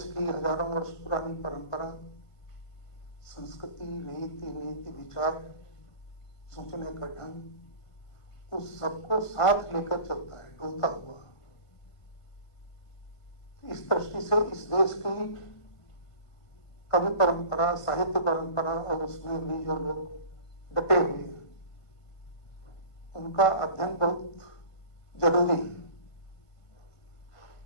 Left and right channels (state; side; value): late; right; 1.5 ms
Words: की हजारों वर्ष पुरानी परंपरा, संस्कृति, रीति नीति, विचार, सोचने का ढंग, उस सबको साथ लेकर चलता है, डोलता हुआ। इस दृष्टि से इस देश की कवि परंपरा, साहित्य परंपरा और उसमें भी जो लोग डटे हुए हैं, उनका अध्ययन बहुत जरूरी है।